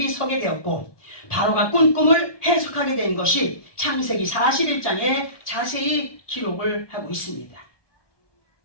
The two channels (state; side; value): late; right; 1.2 ms